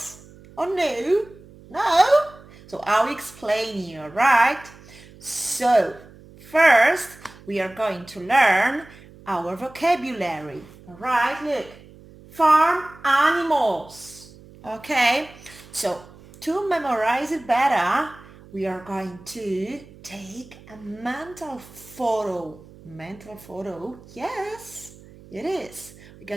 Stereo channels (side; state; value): right; noise; hum, 22 dB below the sound